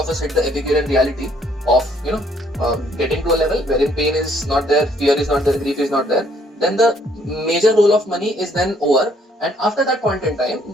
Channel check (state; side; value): normal; both; correlation 0.65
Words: us hit the Epicurean reality of getting to a level wherein pain is not there, fear is not there, grief is not there. Then the major role of money is then over, and after that point in time,